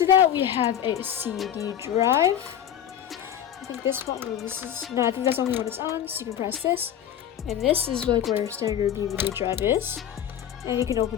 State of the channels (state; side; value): quieter; right; 10.1 dB